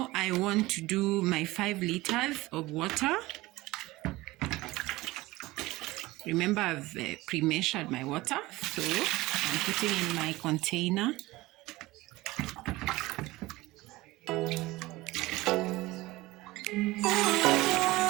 I want to do my 5 liters of water. Remember, I've pre-measured my water, so I'm putting in my container.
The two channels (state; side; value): quieter; left; 19.6 dB